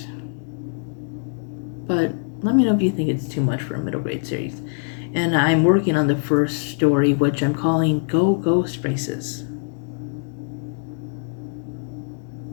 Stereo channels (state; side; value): silent; right; digital silence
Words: But let me know if you think it's too much for a middle grade series. And I'm working on the first story, which I'm calling Go Ghost Races.